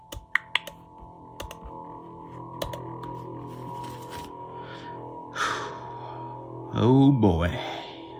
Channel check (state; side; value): identical; both; correlation 1.00